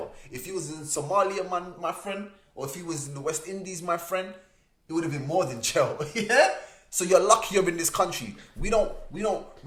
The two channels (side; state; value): both; identical; correlation 1.00